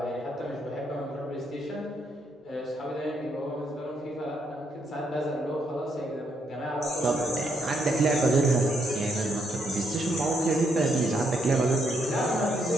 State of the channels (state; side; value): normal; both; correlation 0.76